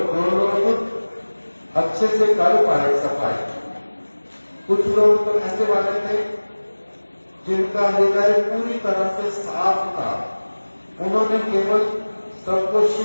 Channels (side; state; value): both; inverted; correlation -1.00